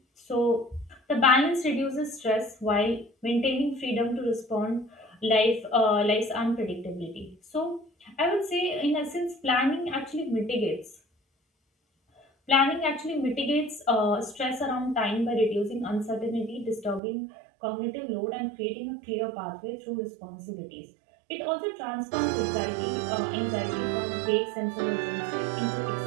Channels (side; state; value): left; drops out; at 17.0 s